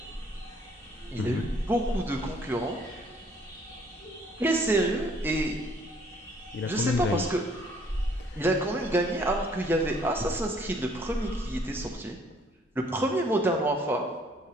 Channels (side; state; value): both; normal; correlation 0.62